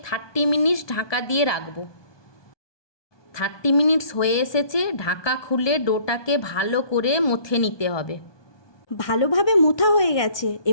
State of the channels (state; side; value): late; right; 1.2 ms